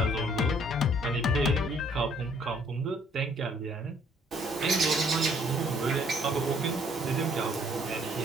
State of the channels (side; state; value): both; normal; correlation 0.62